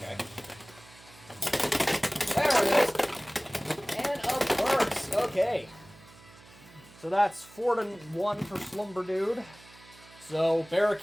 There it is. And a burst. Okay. So that's 4-1 for Slumber Dude. So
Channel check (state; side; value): noise; right; hum, 23 dB below the sound